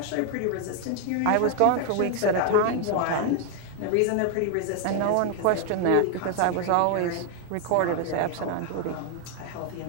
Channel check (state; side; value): different; both; correlation 0.00